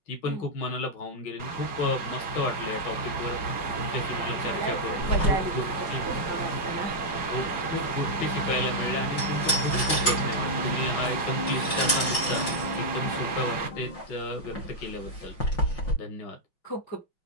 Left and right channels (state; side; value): late; right; 5.5 ms